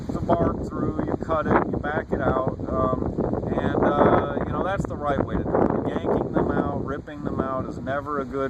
the bark through, you cut it, you back it out, and you know, that's the right way to do it. Yanking them out, ripping them out is never a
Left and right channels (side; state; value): both; identical; correlation 1.00